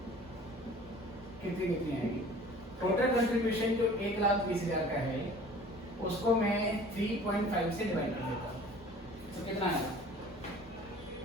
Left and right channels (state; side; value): normal; both; correlation 0.47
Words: कितनी आएगी, टोटल कंट्रीब्यूशन जो 1,20,000 का है उसको मैं 3.5 से डिवाइड कर देता हूँ, तो कितना आएगा